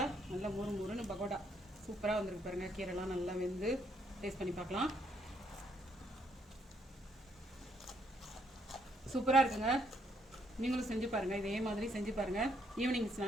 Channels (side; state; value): both; normal; correlation 0.72